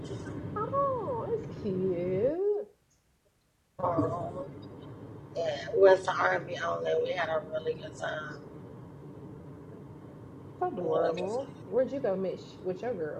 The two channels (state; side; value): identical; both; correlation 1.00